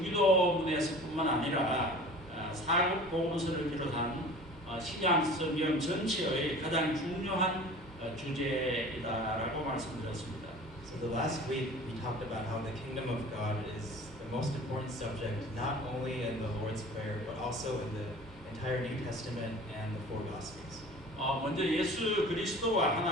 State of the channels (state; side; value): normal; both; correlation 0.42